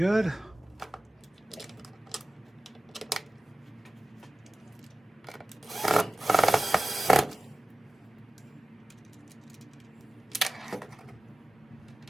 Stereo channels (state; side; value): normal; both; correlation 0.97